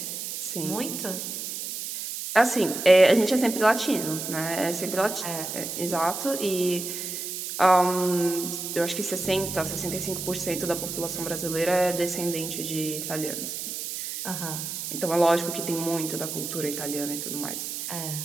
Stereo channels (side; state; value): right; noise; hiss, 6 dB below the sound